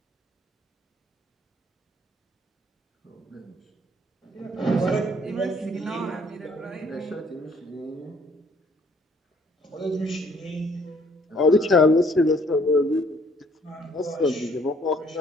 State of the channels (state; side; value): normal; both; correlation 0.62